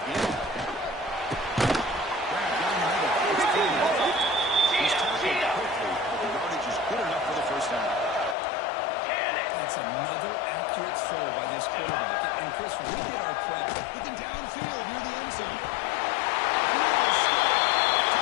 Grab down the middle. It's clean. He's tackled quickly, but the yardage is good enough for the first down. That's another accurate throw by this quarterback. And Chris, we did our prep. Looking downfield near the end zone.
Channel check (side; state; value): right; drops out; at 8.3 s